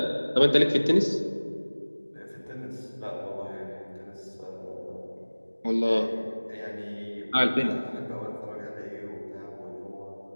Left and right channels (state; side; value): inverted; both; correlation -1.00